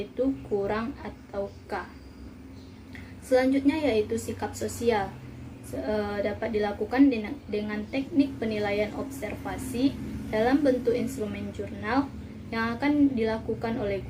kurang atau K. Selanjutnya yaitu sikap sosial. Dapat dilakukan dengan teknik penilaian observasi dalam bentuk instrumen jurnal yang akan dilakukan oleh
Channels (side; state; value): both; identical; correlation 1.00